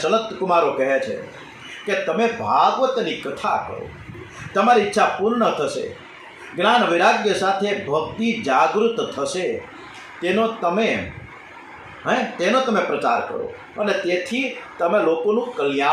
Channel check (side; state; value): both; identical; correlation 1.00